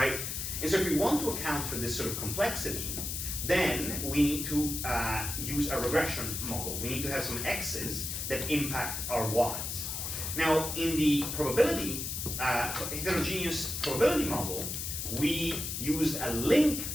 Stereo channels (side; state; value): left; noise; hiss, 4 dB below the sound